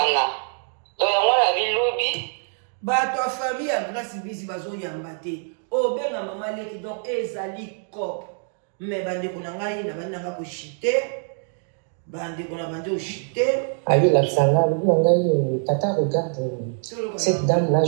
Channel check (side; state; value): left; silent; 56 dB below the other